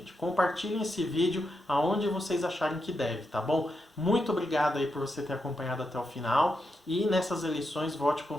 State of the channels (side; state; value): both; normal; correlation 0.85